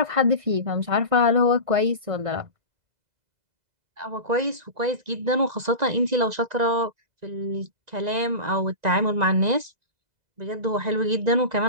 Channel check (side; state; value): left; late; 1.9 ms